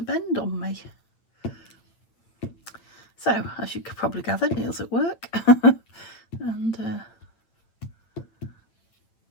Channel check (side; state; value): right; late; 8.9 ms